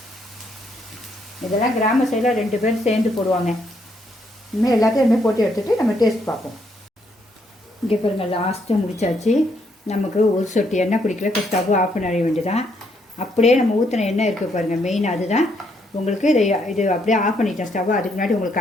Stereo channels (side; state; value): both; normal; correlation 0.73